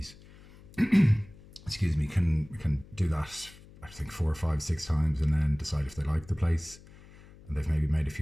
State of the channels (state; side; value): noise; left; hum, 22 dB below the sound